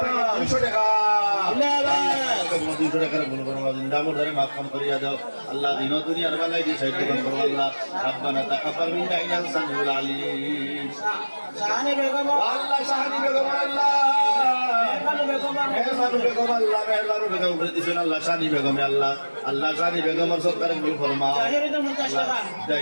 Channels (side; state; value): both; inverted; correlation -1.00